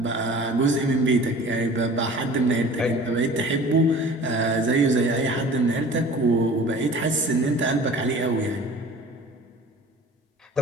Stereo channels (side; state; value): both; normal; correlation 0.44